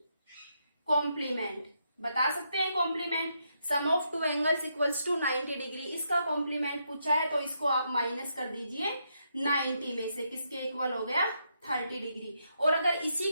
कॉम्प्लीमेंट बता सकते हैं complement sum of two angles equals to 90 degree. इसका कॉम्प्लीमेंट पूछा है तो इसको आप माइनस कर दीजिए 90 में से. किसके इक्वल हो गया? 30 डिग्री. और अगर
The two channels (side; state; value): both; inverted; correlation -0.79